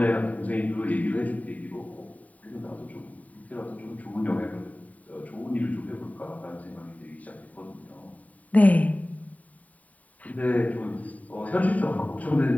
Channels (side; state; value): right; late; 0.071 ms